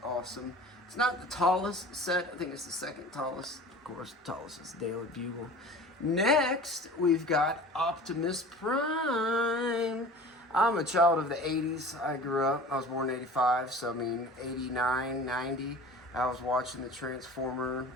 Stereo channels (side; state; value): both; normal; correlation 0.41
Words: awesome. It's not the tallest set. I think it's the second tallest. Of course, the tallest is Daily Bugle. Next, we've got Optimus Prime. I'm a child of the 80s. I grew up, I was born in 85, so I mean 89, 90. I was watching the Transformer,